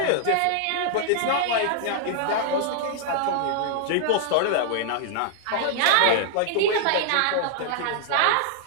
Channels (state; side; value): different; both; correlation -0.01